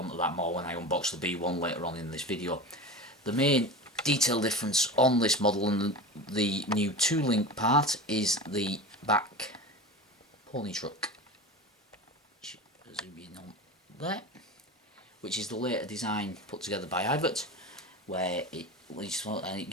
that more when I unbox the B1 later on in this video. The main detail difference on this model and the new 2-link part is the back pony truck. Zoom in on there, which is the later design put together by Ivert, where it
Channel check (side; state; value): both; normal; correlation 0.30